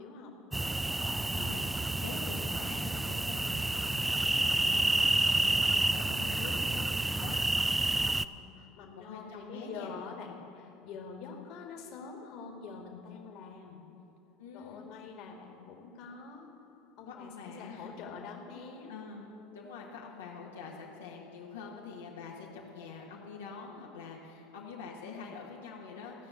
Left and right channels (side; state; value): both; normal; correlation 0.90